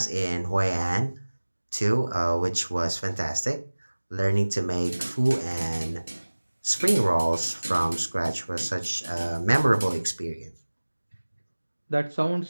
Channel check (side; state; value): both; inverted; correlation -1.00